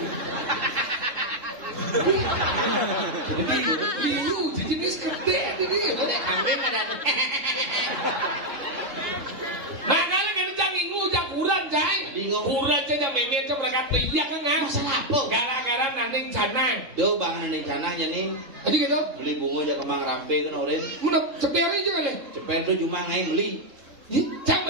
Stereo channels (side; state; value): left; late; 3.7 ms